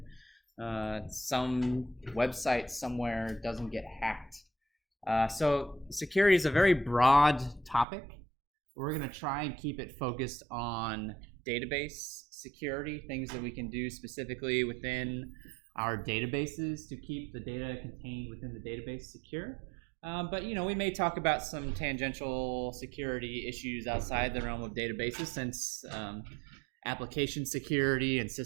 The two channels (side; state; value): left; drops out; at 7.9 s